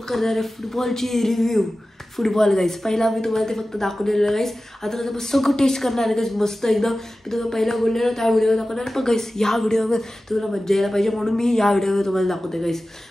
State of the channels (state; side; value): normal; both; correlation 0.95